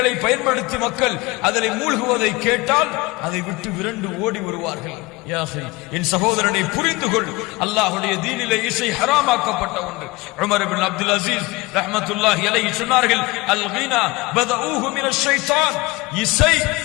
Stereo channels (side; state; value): right; quieter; 22.8 dB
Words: பயன்படுத்தி மக்கள் அதில் மூழ்குவதை கேட்டால் அதை விட்டு விரண்டு ஓடி வருவார்கள். என் சகோதரனை புரிந்து கொள், அல்லாஹ்வுடைய தீனிலே இசை ஹராமாக்கப்பட்ட ஒன்று. உமர் இப்னு அப்துல் அஸீஸ் ரஹ்மத்துல்லாஹி அலைஹி சொன்னார்கள், அல் கீனா பதஊஹு மினஷ் ஷைத்தான், இசை